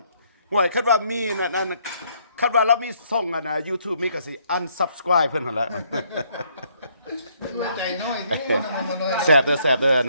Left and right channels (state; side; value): inverted; both; correlation -0.69